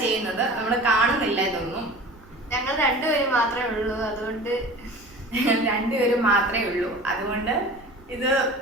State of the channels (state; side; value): noise; right; rumble, 24 dB below the sound